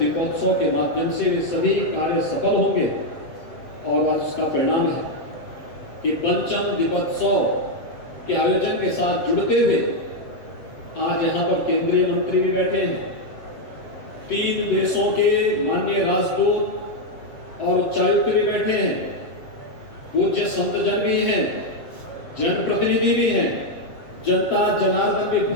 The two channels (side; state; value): right; late; 7.8 ms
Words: के माध्यम से वे सभी कार्य सफल होंगे। और आज उसका परिणाम है कि पंचम दीपोत्सव के आयोजन के साथ जुड़ते हुए आज यहाँ पर केंद्रीय मंत्री भी बैठे हैं, 3 देशों के माननीय राजदूत और उच्चायुक्त भी बैठे हैं, पूज्य संतजन भी हैं, जनप्रतिनिधि भी हैं, जनता जनार्दन भी